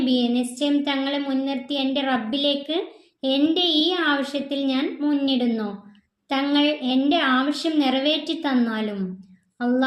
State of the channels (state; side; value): identical; both; correlation 1.00